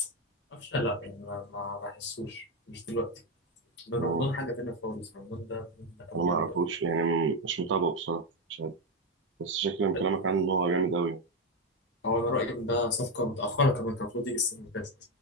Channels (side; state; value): both; normal; correlation 0.08